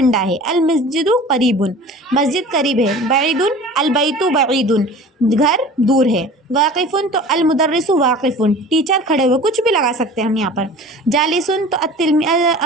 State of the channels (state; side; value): normal; both; correlation 0.41